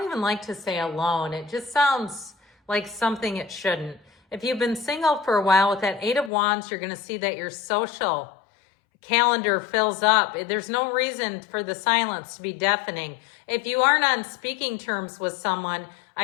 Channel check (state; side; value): drops out; right; at 6.3 s